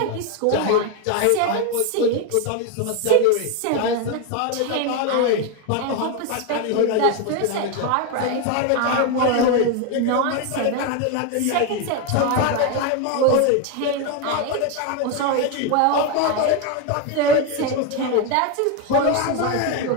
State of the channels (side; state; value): both; different; correlation 0.02